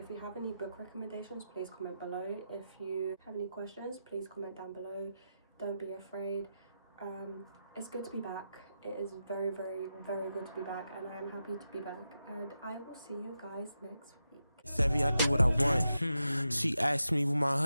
you have any book recommendations, please comment below. If you have any questions, please comment down below. Don't be afraid. It's good to be back. It is very, very, very good to be back, and I am happy to be back, and I will see you guys next week. Savvy, I do what I want. She asked me where my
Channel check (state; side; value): inverted; both; correlation -0.88